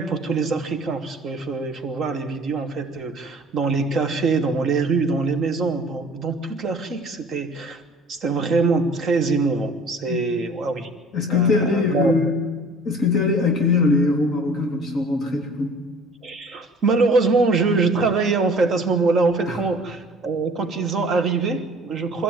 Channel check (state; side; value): normal; both; correlation 0.48